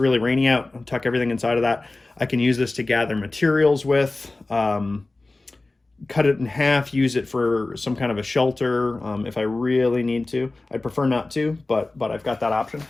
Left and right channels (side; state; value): right; quieter; 3.1 dB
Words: rainy out, I'll tuck everything inside of that. I can use this to gather materials with, cut it in half, use it for some kind of a shelter if I really need to. I'd prefer not to, but I've got that option.